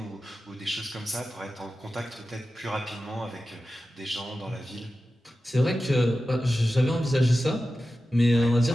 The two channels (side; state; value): both; normal; correlation 0.93